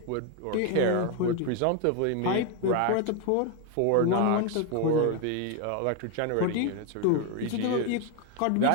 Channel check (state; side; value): different; both; correlation 0.01